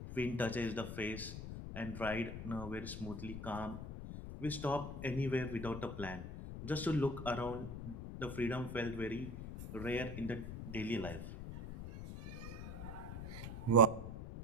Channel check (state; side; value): noise; left; rumble, 7 dB below the sound